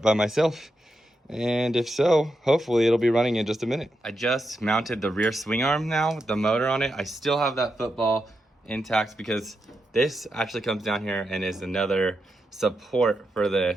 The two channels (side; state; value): both; normal; correlation 0.85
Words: by myself. And if so, hopefully it'll be running in just a minute. I just mounted the rear swing arm now with the motor on it. I still have that football intact because this actually comes down here and is another support for the